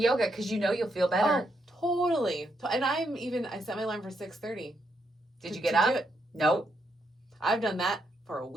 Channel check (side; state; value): both; normal; correlation 0.79